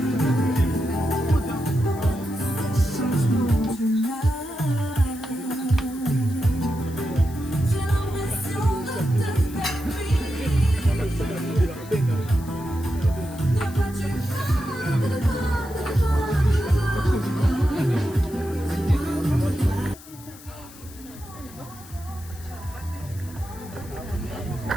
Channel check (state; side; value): noise; left; hiss, 19 dB below the sound